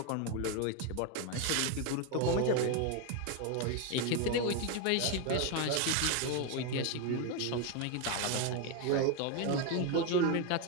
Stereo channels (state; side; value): different; both; correlation 0.02